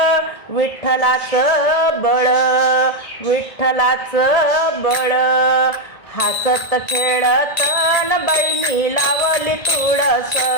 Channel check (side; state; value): right; late; 1.7 ms